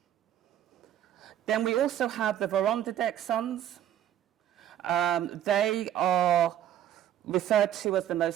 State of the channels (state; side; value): quieter; left; 11.1 dB